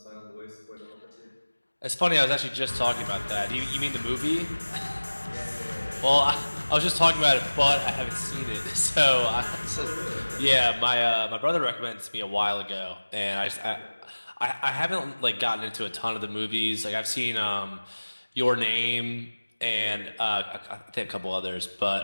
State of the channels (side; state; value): both; inverted; correlation -1.00